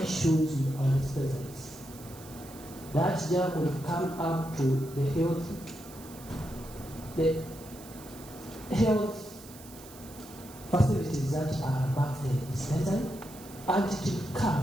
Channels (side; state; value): right; noise; hiss, 18 dB below the sound